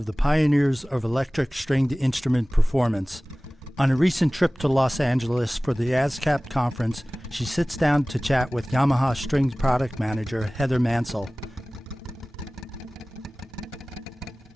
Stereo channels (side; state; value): both; normal; correlation 0.98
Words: the pioneers of electric stringed instrument performance. On a recent trip to Los Angeles for the ASCAP conference, she sits down to chat with Yamaha Strings product manager Heather Mansell.